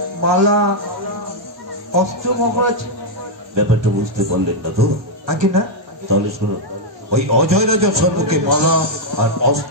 মালা, অস্ত্র মহারাজ? ব্যাপারটা বুঝতে পারলেন না তো? আগে না। তাহলে শুনুন, ওই অজয় রাজার সম্মুখে মালা আর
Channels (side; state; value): left; late; 1.2 ms